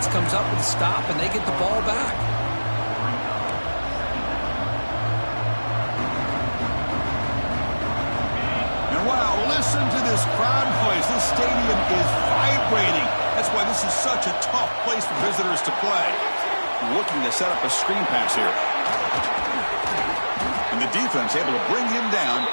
comes up with a stop and they get the ball back. And wow, listen to this crowd noise. This stadium is vibrating. That's why this is such a tough place for visitors to play. Looking to set up a screen pass here. And the defense able to bring him down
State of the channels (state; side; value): inverted; both; correlation -1.00